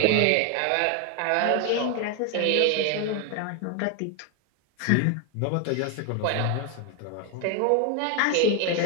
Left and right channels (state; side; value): different; both; correlation 0.01